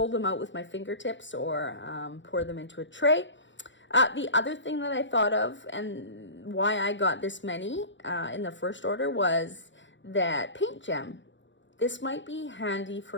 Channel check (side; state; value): right; late; 0.54 ms